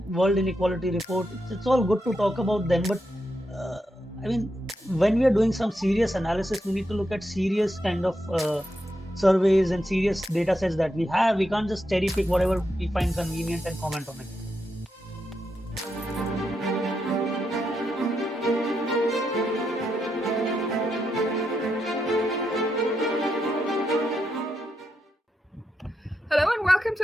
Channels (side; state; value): both; normal; correlation 0.83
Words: World Inequality Report, it's all good to talk about them, but uh, I mean, when we are doing some serious analysis, we need to look at serious kind of surveys and serious data sets that we have. We can't just cherry pick whatever we find convenient and comment on it. Hello and welcome